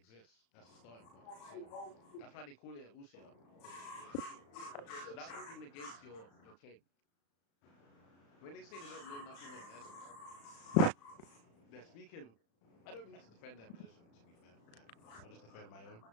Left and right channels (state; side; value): late; right; 35 ms